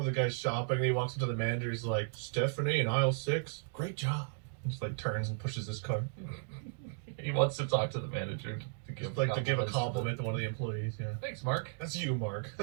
the guy's shopping and he walks up to the manager. He's like, Stephanie in aisle 6, great job. Just like turns and pushes his cart. He wants to talk to the manager to give Just like to give a compliments compliment to one of the employees. Yeah, Thanks, Mark. that's you, Mark.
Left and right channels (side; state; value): left; silent; digital silence